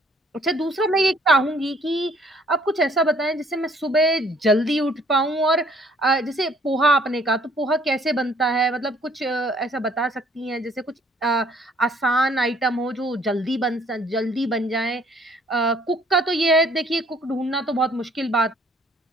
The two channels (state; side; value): normal; both; correlation 0.61